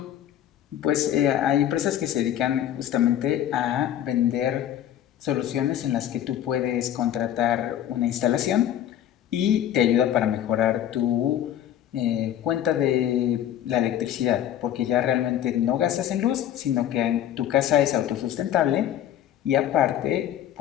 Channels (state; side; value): quieter; right; 11.1 dB